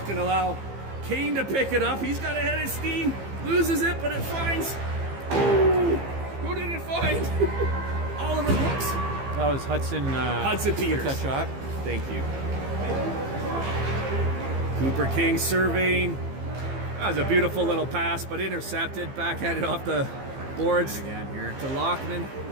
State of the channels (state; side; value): late; left; 15 ms